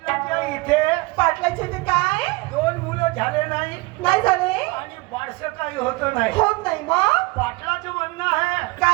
इथे पाटलाचे ते काय दोन मुलं झाले नाही नाही झाले आणि बारसं काही होत नाही होत नाही मग पाटलाचं म्हणणं आहे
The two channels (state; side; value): quieter; left; 24.6 dB